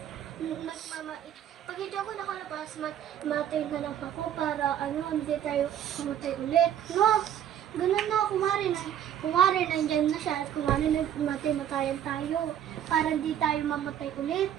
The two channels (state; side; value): quieter; left; 10.1 dB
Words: Pag hindi ako nakalabas, matay na lang ako para hindi tayo pumatay ulit. No, ganun na, kumari nandyan na siya at kumari matayan tayo para hindi tayo mamatay ulit.